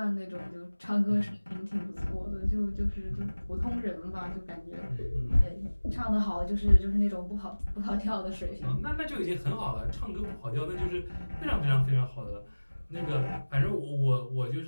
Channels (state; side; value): inverted; both; correlation -1.00